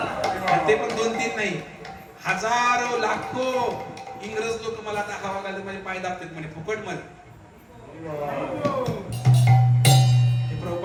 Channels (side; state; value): both; identical; correlation 1.00